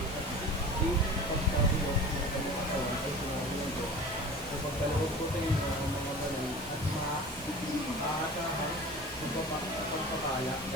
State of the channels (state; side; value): normal; both; correlation 0.37